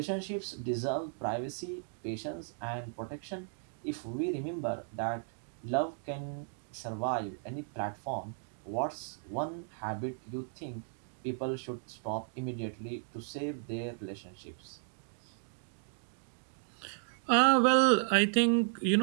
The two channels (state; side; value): silent; left; digital silence